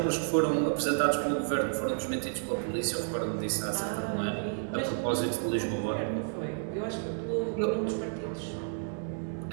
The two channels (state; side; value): silent; left; 57 dB below the other